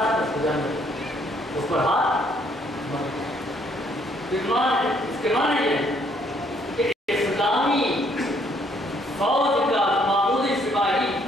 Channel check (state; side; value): normal; both; correlation 0.67